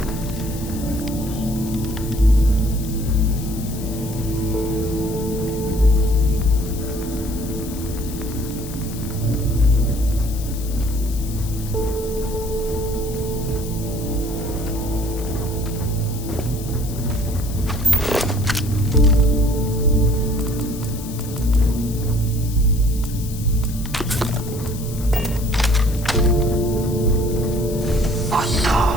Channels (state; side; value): noise; left; hiss, 14 dB below the sound